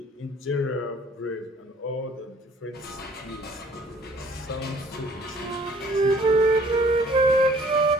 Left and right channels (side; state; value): both; normal; correlation 0.56